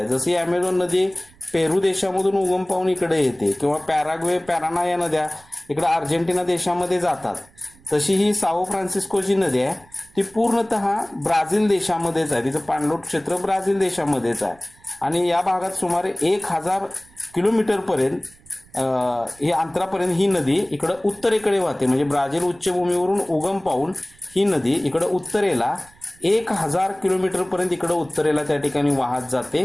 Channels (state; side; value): noise; right; rumble, 28 dB below the sound